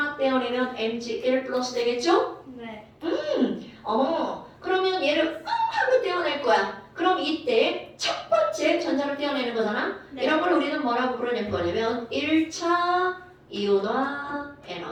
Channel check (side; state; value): both; identical; correlation 1.00